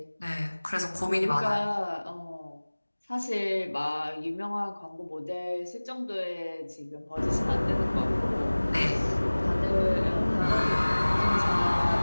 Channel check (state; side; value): inverted; both; correlation -1.00